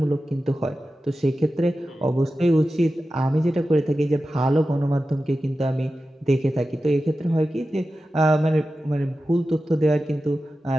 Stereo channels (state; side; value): normal; both; correlation 0.93